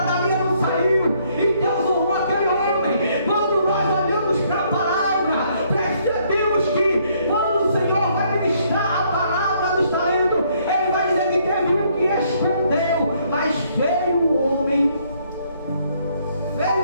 dali ele não saiu, e Deus honrou aquele homem. Quando nós olhamos para a palavra, percebemos que quando o Senhor vai ministrar a palavra dos talentos, ele vai dizer que teve um que escondeu, mas veio o homem,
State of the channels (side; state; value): both; inverted; correlation -0.68